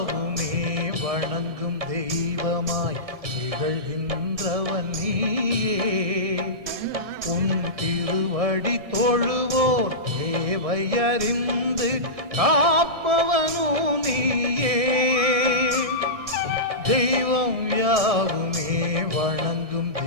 வணங்கும் தெய்வமாய் திகழ்கின்றவன் நீயே உன் திருவடி தொழுவோர் தேவையறிந்து காப்பவனோ நீயே தெய்வம் யாவுமே வணங்கும்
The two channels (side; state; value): left; late; 1.6 ms